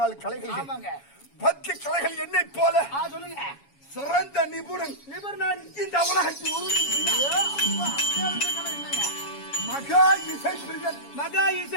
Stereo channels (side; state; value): right; late; 7.2 ms